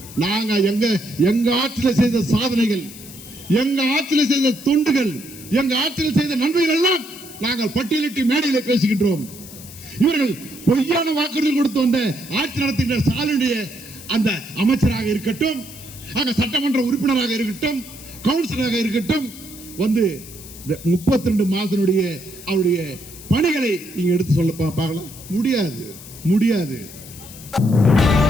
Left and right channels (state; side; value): noise; left; hiss, 16 dB below the sound